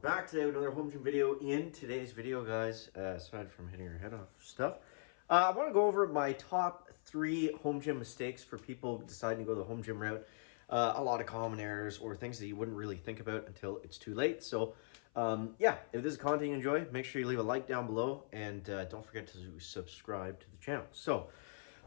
today with another home gym video. In today's video, guys, aside from hitting your head off stuff, I want to go over my top 3 home gym mistakes for people deciding to go the home gym route. A lot of common errors or things that you wouldn't really think about until it's too late. So, yeah, if this is content you enjoy, make sure you leave a like down below and don't forget to subscribe to the channel. So,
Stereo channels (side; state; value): right; silent; 51 dB below the other